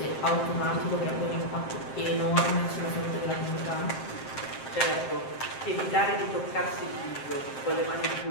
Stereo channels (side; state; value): right; late; 7.6 ms